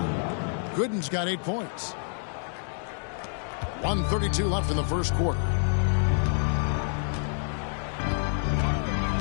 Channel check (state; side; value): silent; right; 57 dB below the other